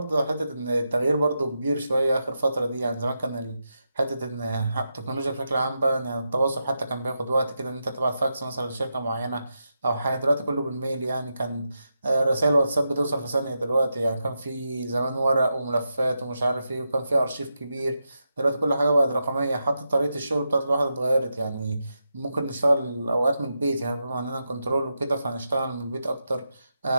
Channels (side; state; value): both; inverted; correlation -0.87